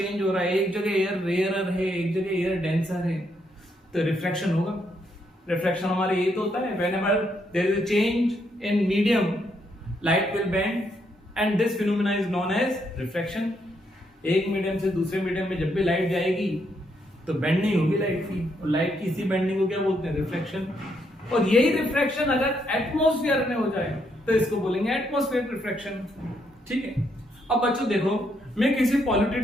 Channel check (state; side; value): normal; both; correlation 0.76